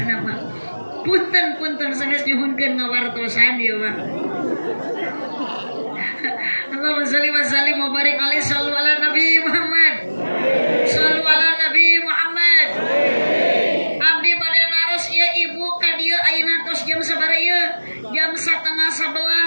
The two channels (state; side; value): inverted; both; correlation -1.00